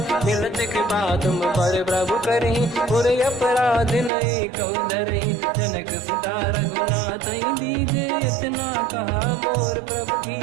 मिलत कृपा तुम पर प्रभु करहि, पुर अपराध नहीं कहु धरहि। जनक सुता रघुनाथ दीजे, इतना कहा मोर प्रभु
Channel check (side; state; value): left; drops out; at 4.1 s